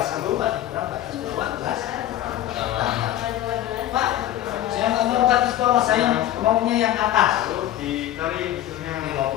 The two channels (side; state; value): right; quieter; 13.1 dB